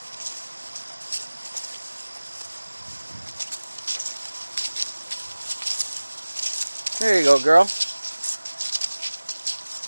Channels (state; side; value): inverted; both; correlation -1.00